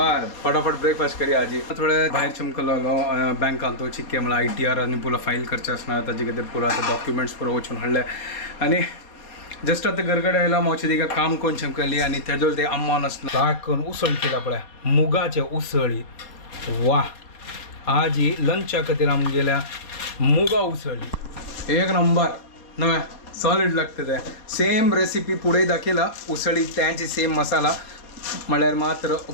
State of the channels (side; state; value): right; late; 4.2 ms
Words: फटाफट ब्रेकफास्ट करी आजी थोडे भायर चमकलो बँकान तो चिक्के मला ITR आणि पुला फाईल करचे असणार ताजे खातीर पुरा डॉक्युमेंट्स पुरो वचून हाडले आणि जस्ट आता घरकडे आयला मावची तिका काम कोण चमकली आणि तेजो ते अम्मान असणार लाग करून उसळ केला पळय मुगाचे उसळी वा आजी लंचा खातीर आम गेल्या मुगा उसळी एक नंबर नव्हे सॉलिड लागतं ते सेम रेसिपी पुढे दाखयला उसळी त्यांची सेम मसाला म्हळ्यार मात्र